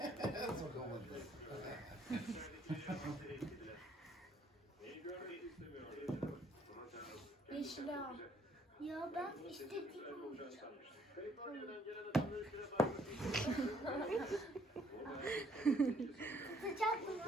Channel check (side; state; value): both; normal; correlation 0.65